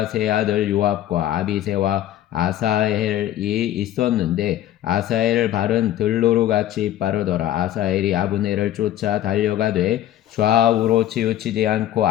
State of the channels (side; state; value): right; quieter; 12.6 dB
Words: 세 아들 요압과 아비새와 아사헬이 있었는데 아사헬 발은 들로루같이 빠르더라. 아사헬이 아브넬을 쫓아 달려가되 좌우로 치우치지 않고